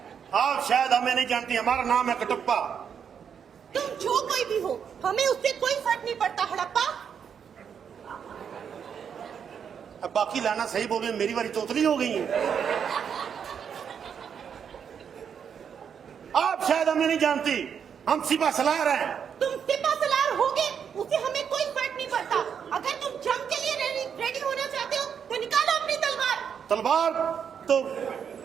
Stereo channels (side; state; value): left; quieter; 7.5 dB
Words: आप शायद हमें नहीं जानती, हमारा नाम है कटप्पा। तुम जो कोई भी हो, हमें उससे कोई फर्क नहीं पड़ता। हड़प्पा। अब बाकी लाना सही बोल रहे, मेरी बारी तोतली हो गई है। आप शायद हमें नहीं जानती, हम सिपा सलार हैं। तुम सिपा सलार होगे, उससे हमें कोई फर्क नहीं पड़ता। अगर तुम जंग के लिए रेडी होना चाहते हो तो निकालो अपनी तलवार। तलवार तो